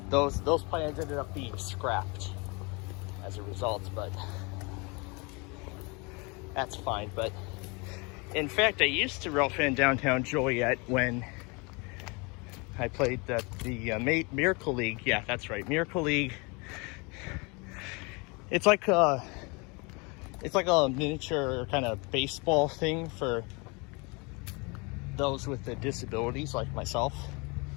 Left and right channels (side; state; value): right; quieter; 29.3 dB